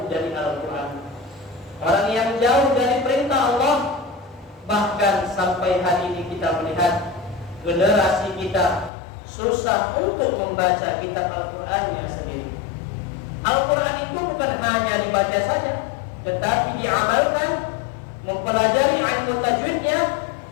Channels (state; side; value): drops out; right; at 8.9 s